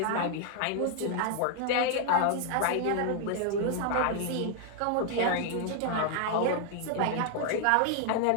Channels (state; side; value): different; both; correlation 0.00